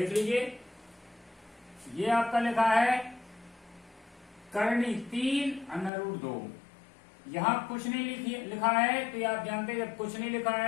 लीजिए। ये आपका लिखा है करनी 3 √2। यहां कुछ नहीं लिखा है तो ये आप जानते हैं जब कुछ नहीं लिखा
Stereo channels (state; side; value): drops out; right; at 5.9 s